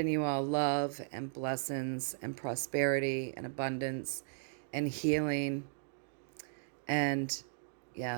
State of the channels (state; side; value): silent; left; digital silence